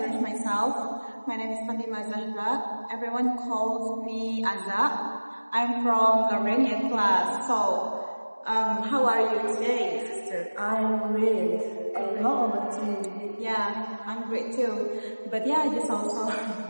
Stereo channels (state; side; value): inverted; both; correlation -1.00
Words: myself. My name is Fatima Zahra. Everyone calls me Azza. I'm from Garmenian class. So, how are you today, sister? I'm great. And how about you? Yeah, I'm great too. But yeah, just also.